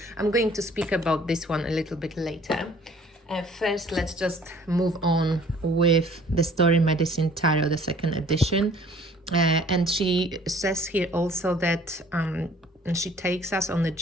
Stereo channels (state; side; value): normal; both; correlation 0.54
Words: I'm going to speak about this one a little bit later. First, let's just move on with the Story Medicine Tarot, the second edition. And she says here also that she takes us on the